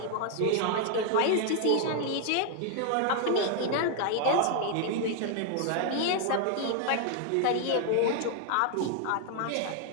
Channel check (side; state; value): both; different; correlation 0.00